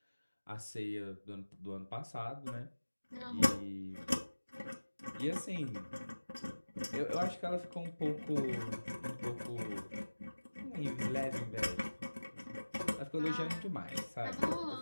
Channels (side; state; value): both; inverted; correlation -1.00